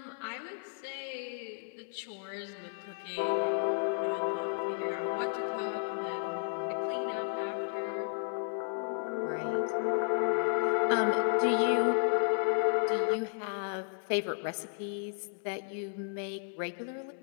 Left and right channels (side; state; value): right; silent; digital silence